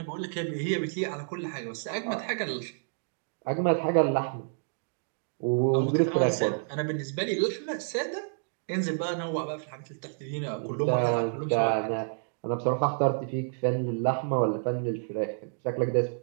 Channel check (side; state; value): left; silent; digital silence